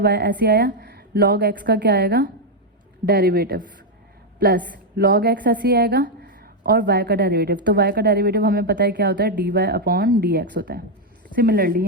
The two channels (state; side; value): normal; both; correlation 0.01